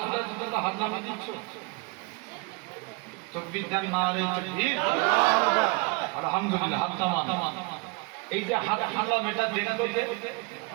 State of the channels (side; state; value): left; quieter; 27.9 dB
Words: তুলে তোমরা হাত নামিয়ে দিচ্ছ, তাকবীর দেন, নারে তাকবীর, আল্লাহু আকবার, আলহামদুলিল্লাহ, হাত নামান। এই যে হাত হামলা মেটা দেখলো কে?